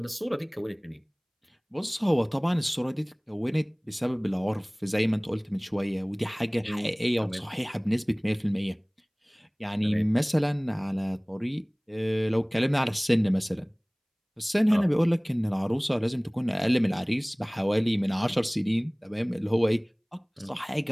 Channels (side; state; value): both; identical; correlation 1.00